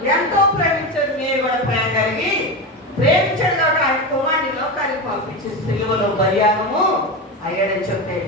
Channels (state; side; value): normal; both; correlation 0.19